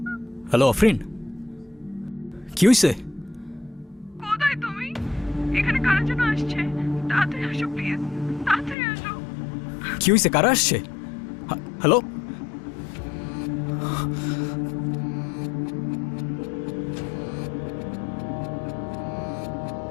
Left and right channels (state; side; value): drops out; right; at 8.8 s